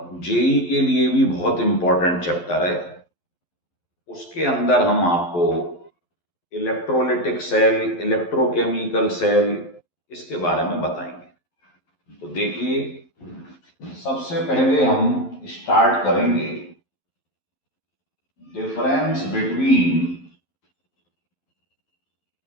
जेई के लिए भी बहुत इंपॉर्टेंट चैप्टर है, उसके अंदर हम आपको इलेक्ट्रोलिटिक सेल, इलेक्ट्रोकेमिकल सेल, इसके बारे में बताएंगे। तो देखिए, सबसे पहले हम स्टार्ट करेंगे difference between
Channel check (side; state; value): right; late; 11 ms